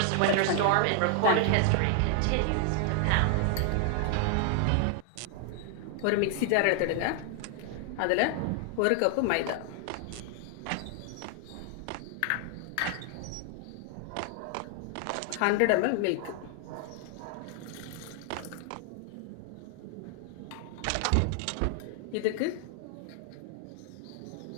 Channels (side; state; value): both; different; correlation 0.00